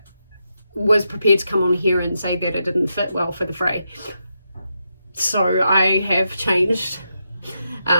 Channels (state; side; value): inverted; both; correlation -0.84